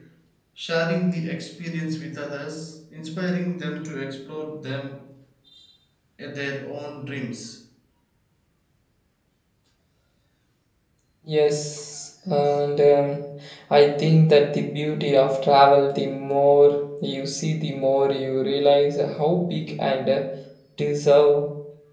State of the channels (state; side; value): identical; both; correlation 1.00